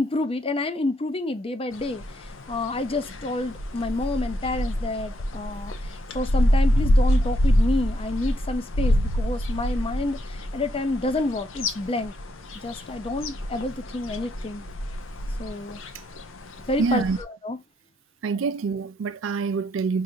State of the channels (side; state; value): both; normal; correlation 0.75